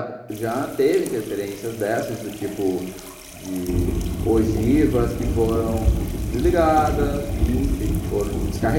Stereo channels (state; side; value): identical; both; correlation 1.00